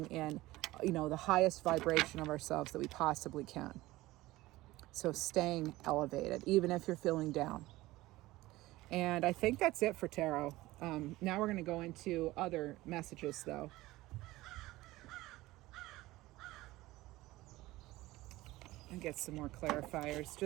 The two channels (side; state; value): left; quieter; 18.2 dB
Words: in, the highest vibration of ourselves that we possibly can. So staying elevated, even if you're feeling down. And I think that's it for tarot. Now we're going to go into other messages, though. And get some more clarifiers